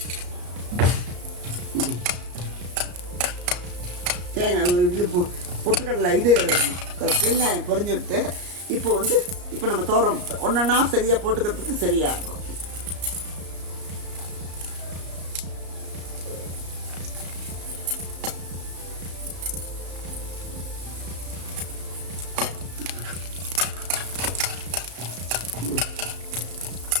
தேங்காய் இது பொட்டுக்கடலை இது வெங்காயம் பொரிஞ்சுட்டு இப்போ நம்ம தோரம் ஒன்றா சரியாக போட்டுக்கிறதுக்கு சரியாக இருக்கும்.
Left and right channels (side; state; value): left; late; 34 ms